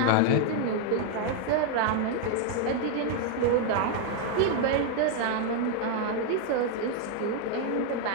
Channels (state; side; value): different; both; correlation 0.00